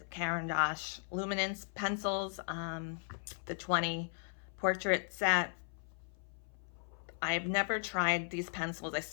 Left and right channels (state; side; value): silent; right; 53 dB below the other